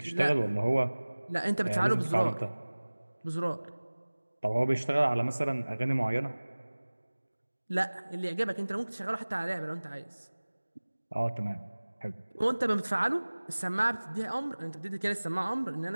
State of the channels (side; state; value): both; inverted; correlation -1.00